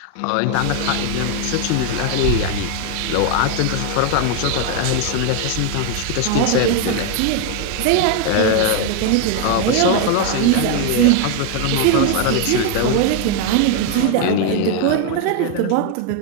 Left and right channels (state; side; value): different; both; correlation 0.01